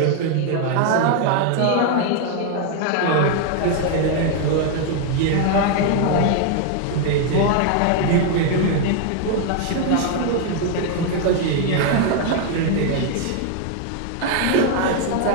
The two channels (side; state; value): both; different; correlation 0.00